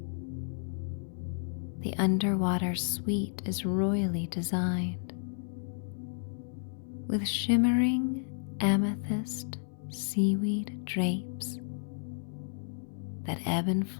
The underwater suite is royally designed, with shimmering amethyst seaweed drapes that ebb and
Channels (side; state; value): right; silent; 56 dB below the other